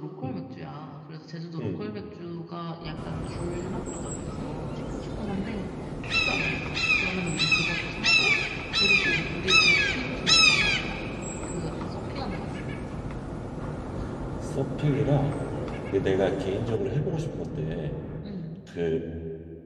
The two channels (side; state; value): both; identical; correlation 1.00